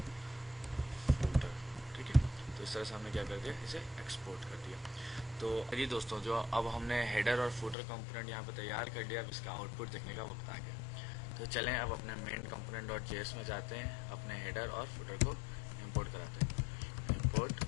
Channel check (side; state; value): right; drops out; at 7.8 s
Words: फुटर, ठीक है। तो इस तरह से हमने क्या कर दिया, इसे एक्सपोर्ट कर दिया। तो जी दोस्तों, जो अब हमने हेडर और फुटर कंपोनेंट यहाँ पे तैयार कर लिया, अब इसका आउटपुट देखने का वक्त आ गया। तो चलें अब अपने मेन component.js में जाते हैं, अपने हेडर और फुटर को इंपोर्ट कराते हैं। Import